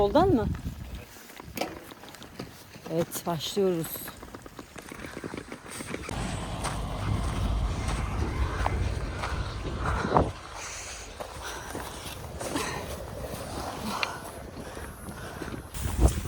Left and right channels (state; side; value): identical; both; correlation 1.00